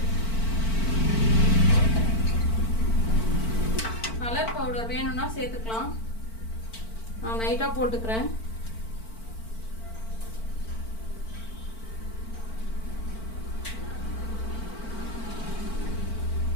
கலர் பவுடர் வேணும்னா சேர்த்துக்கலாம். நான் லைட்டாக போட்டுக்கிறேன்.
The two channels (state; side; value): late; right; 4.5 ms